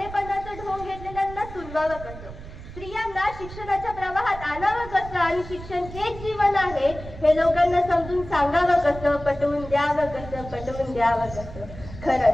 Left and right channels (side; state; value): right; noise; rumble, 13 dB below the sound